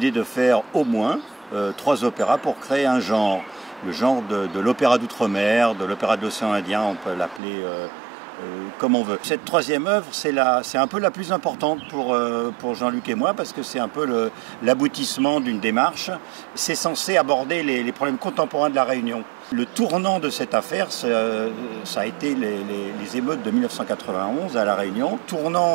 de faire au moins 3 opéras pour créer un genre. Le genre de l'opéra d'outre-mer, de l'opéra de l'océan Indien, on peut l'appeler comme on veut. Cette troisième œuvre, c'est un peu la plus importante pour Jean-Luc et moi, parce que c'est un peu l'aboutissement d'une démarche. C'est censé aborder les problèmes contemporains de la Réunion. Le tournant de cette affaire, ça a été les émeutes de 1991 à La Réunion.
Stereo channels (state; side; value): drops out; left; at 7.4 s